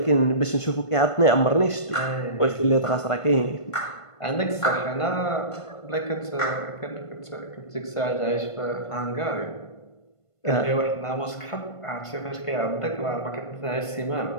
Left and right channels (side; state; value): right; late; 1.5 ms